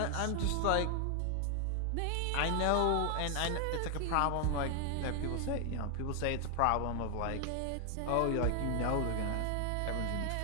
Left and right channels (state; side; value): different; both; correlation 0.00